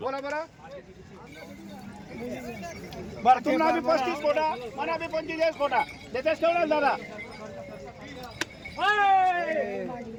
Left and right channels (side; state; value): both; identical; correlation 1.00